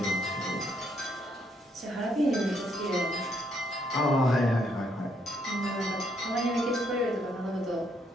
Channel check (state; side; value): normal; both; correlation 0.72